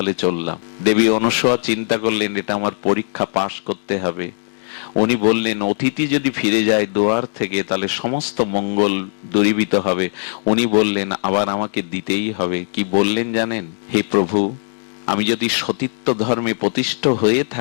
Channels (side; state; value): right; silent; digital silence